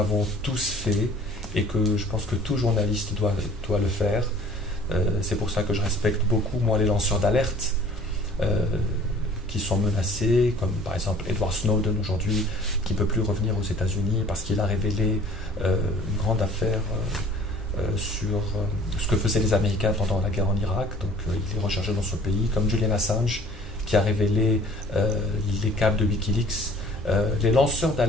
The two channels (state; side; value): normal; both; correlation 0.51